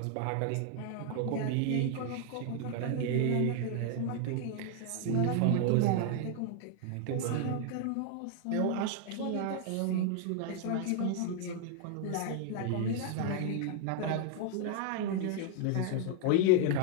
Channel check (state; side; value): different; both; correlation 0.00